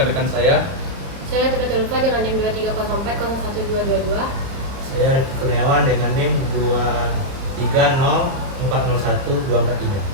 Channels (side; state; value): left; late; 30 ms